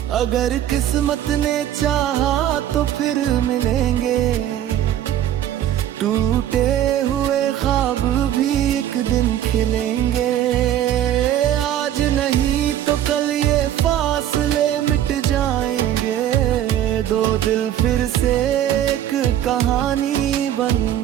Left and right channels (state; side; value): quieter; left; 11.5 dB